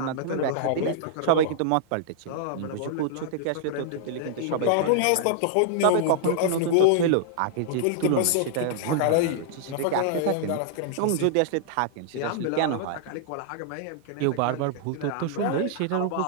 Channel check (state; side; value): different; both; correlation -0.01